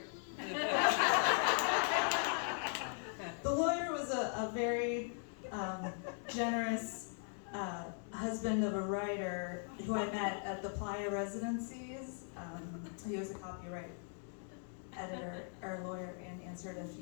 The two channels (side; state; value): right; silent; 52 dB below the other